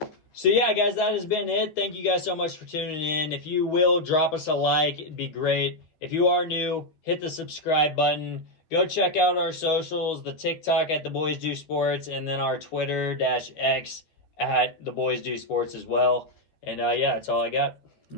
So yeah, guys, that has been it. Thank you guys so much for tuning in. If you will, drop us a like. It'd be great. If you are new, hit the subscribe button. Go check out our socials, the TikTok at The Boys Do Sports, and then our Twitter-X at The Boys Do Sports as well. And yeah, that's all I got.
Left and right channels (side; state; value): right; late; 13 ms